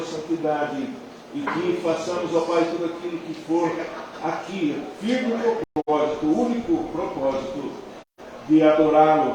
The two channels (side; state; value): both; identical; correlation 1.00